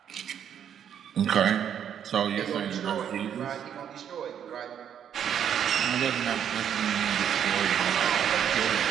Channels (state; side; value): quieter; left; 9.0 dB